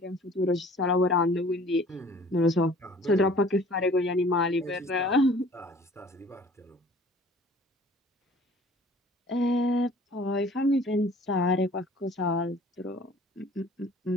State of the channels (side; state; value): both; normal; correlation 0.50